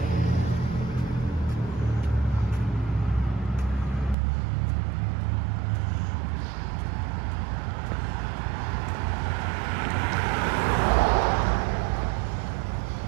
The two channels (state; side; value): drops out; left; at 4.2 s